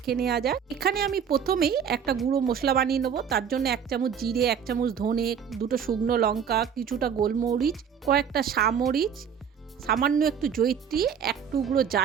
নেওয়া যাক। এখানে আমি প্রথমেই একটা গুঁড়ো মশলা বানিয়ে নেব। তার জন্য 1 চামচ জিরে, 1 চামচ ধনে, 2টো শুকনো লঙ্কা, কিছুটা গোলমরিচ, কয়েকটা সামরিচ, সামান্য একটু জয়িত্রী, 1 টুকরো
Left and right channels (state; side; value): quieter; left; 7.6 dB